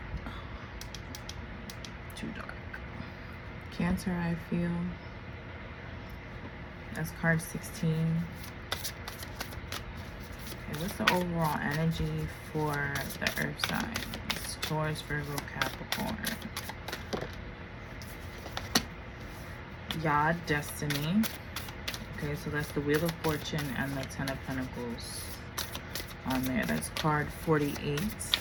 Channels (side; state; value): both; identical; correlation 1.00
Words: Too dark. Cancer, I feel. That's card 16. Okay, what's the overall energy for the earth signs? Taurus, Virgo, Capricorn. Yod, Destiny. Okay, so that's the Wheel of Fortune and the Ten of Pentacles on there. That's card 48.